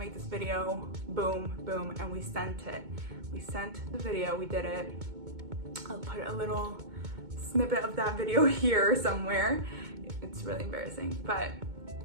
this video, boom, boom, and we sent it. We sent the video, we did it. I'll put a little snippet of that video here somewhere. It's really embarrassing, but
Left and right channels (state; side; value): late; left; 2.2 ms